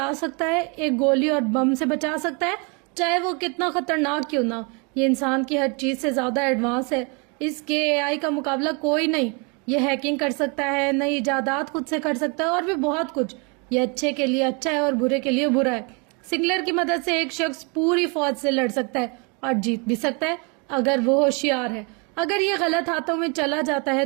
सकता है, एक गोली और बम से बचा सकता है, चाहे वो कितना खतरनाक क्यों ना हो। ये इंसान की हर चीज से ज्यादा एडवांस है। इसके एआई का मुकाबला कोई नहीं। ये हैकिंग कर सकता है, नई इजादात खुद से कर सकता है और भी बहुत कुछ। ये अच्छे के लिए अच्छा है और बुरे के लिए बुरा है। सिंगुलर की मदद से एक शख्स पूरी फौज से लड़ सकता है और जीत भी सकता है अगर वो होशियार है। अगर ये गलत हाथों में चला जाता है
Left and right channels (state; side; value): quieter; left; 32.9 dB